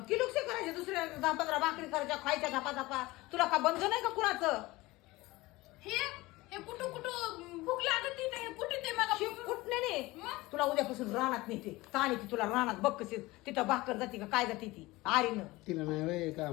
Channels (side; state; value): right; quieter; 20.4 dB